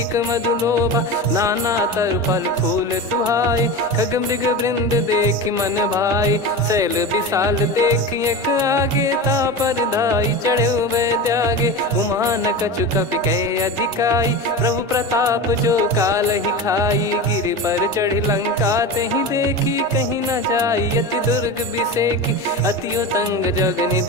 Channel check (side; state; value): both; normal; correlation 0.26